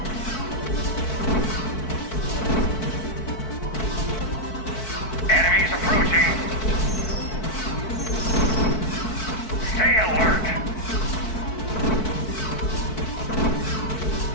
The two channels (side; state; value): right; late; 4.6 ms